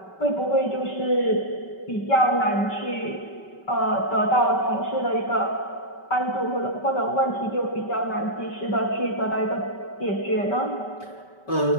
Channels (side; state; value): right; late; 5.2 ms